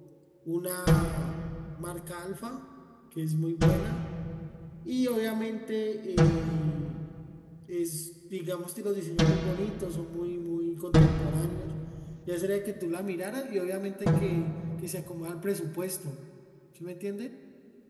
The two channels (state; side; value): identical; both; correlation 1.00